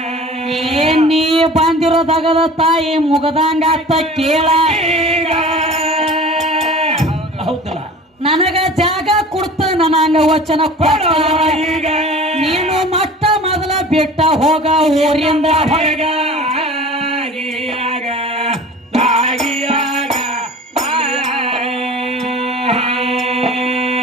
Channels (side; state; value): both; normal; correlation 0.40